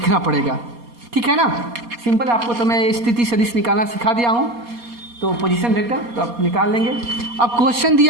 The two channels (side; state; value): left; late; 4.2 ms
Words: पड़ेगा, ठीक है ना। सिंपल, आपको तो मैं स्थिति सदिश निकालना सिखा दिया हूँ, तो पोजीशन वेक्टर तो आप निकाल लेंगे। अब क्वेश्चन